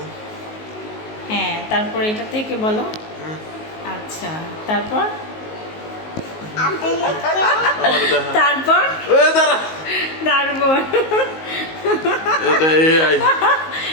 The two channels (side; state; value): right; late; 19 ms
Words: হ্যাঁ, তারপর এটা থেকে বলো। আচ্ছা, তারপর তারপর তারপর